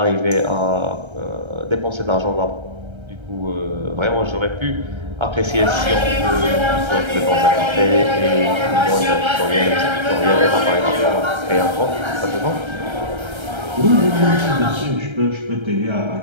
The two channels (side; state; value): left; late; 1.3 ms